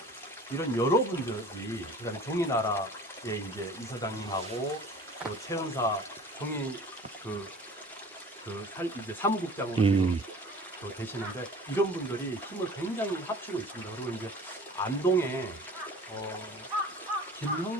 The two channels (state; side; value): normal; both; correlation 0.44